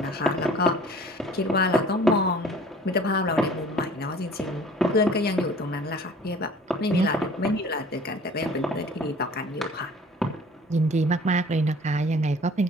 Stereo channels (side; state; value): both; normal; correlation 0.48